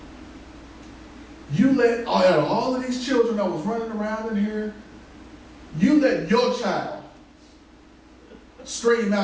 you let out of all of these children that was running around in here, you let your child stream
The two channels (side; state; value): both; identical; correlation 1.00